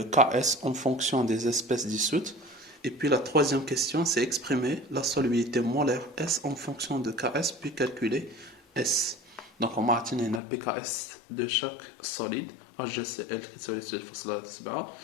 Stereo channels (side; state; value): right; drops out; at 10.4 s